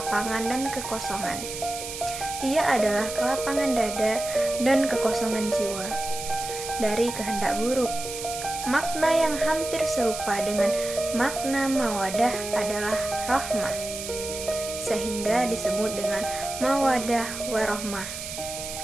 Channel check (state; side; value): noise; right; hiss, 8 dB below the sound